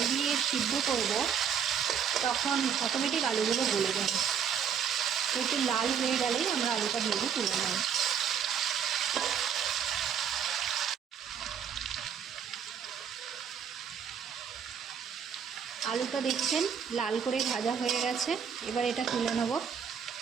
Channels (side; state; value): left; quieter; 7.7 dB